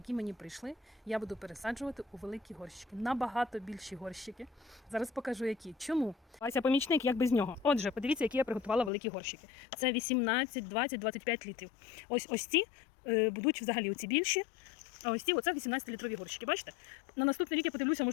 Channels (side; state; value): right; drops out; at 8.9 s